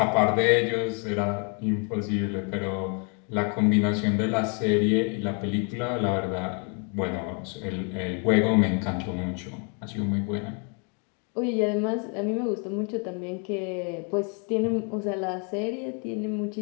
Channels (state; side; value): quieter; right; 37.7 dB